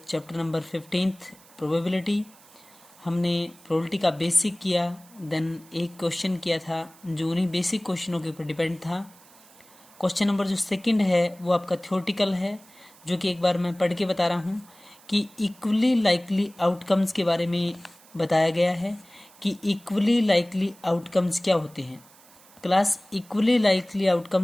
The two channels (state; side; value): noise; right; hiss, 25 dB below the sound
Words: चैप्टर नंबर 15 प्रोबेबिलिटी। हमने प्रोबेबिलिटी का बेसिक किया, देन एक क्वेश्चन किया था जो उन्हीं बेसिक क्वेश्चनों के ऊपर डिपेंड था। क्वेश्चन नंबर जो सेकंड है वो आपका थ्योरेटिकल है, जो कि एक बार मैं पढ़ के बता रहा हूँ कि इक्वली लाइकली आउटकम्स के बारे में बताया गया है कि इक्वली लाइकली आउटकम्स क्या होते हैं। क्लास इक्वली लाइकली